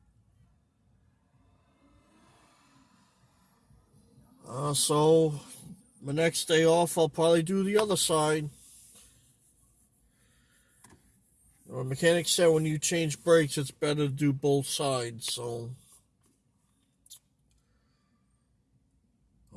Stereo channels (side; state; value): both; identical; correlation 1.00